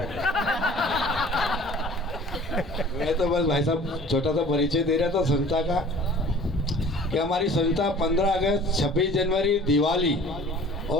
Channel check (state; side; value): normal; both; correlation 0.47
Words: मैं तो बस भाई साहब छोटा सा परिचय दे रहा था संस्था का कि हमारी संस्था 15 अगस्त, 26 जनवरी, दिवाली